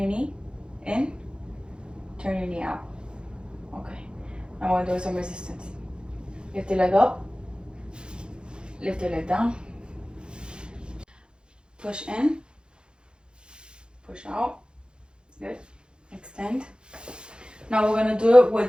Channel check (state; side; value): late; left; 0.051 ms